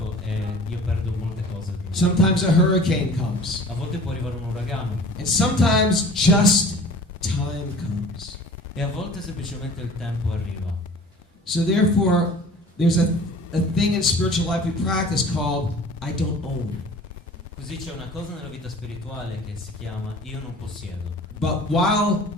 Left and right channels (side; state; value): both; normal; correlation 0.45